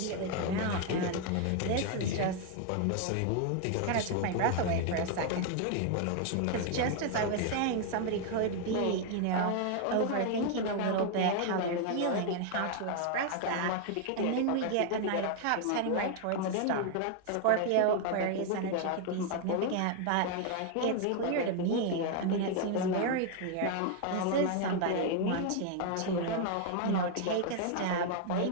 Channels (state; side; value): different; both; correlation 0.00